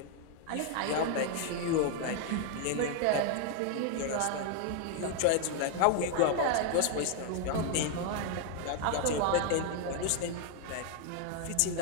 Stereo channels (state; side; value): different; both; correlation 0.01